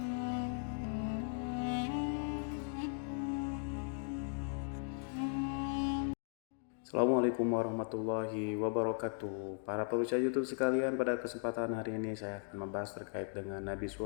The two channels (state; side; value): silent; right; 53 dB below the other